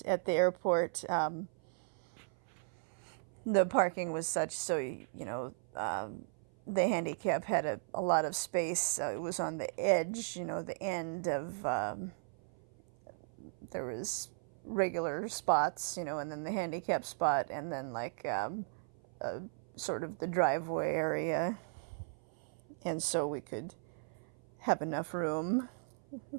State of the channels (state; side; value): silent; left; 53 dB below the other